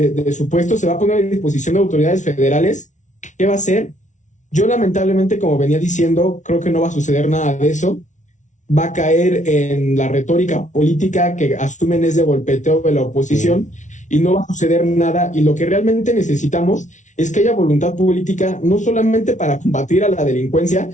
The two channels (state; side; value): late; right; 0.36 ms